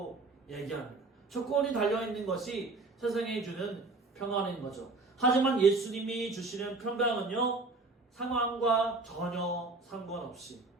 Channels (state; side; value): quieter; left; 3.5 dB